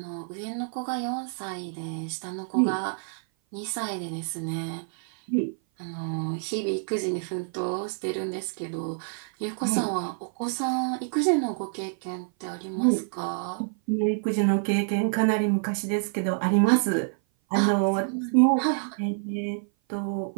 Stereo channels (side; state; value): left; silent; 56 dB below the other